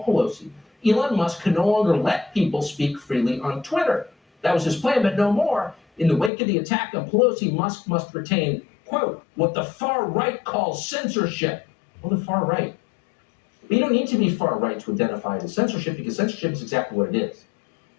Pelosi, Elon Musk could no longer let people speak freely on Twitter. That was his plan, but no more. In the wake of the attack on Pelosi, Musk must retain, quote, what the far right calls censorship. Well, the far right. But you don't need to be far right to identify it as censorship, because censorship is exactly what it is.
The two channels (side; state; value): right; drops out; at 6.3 s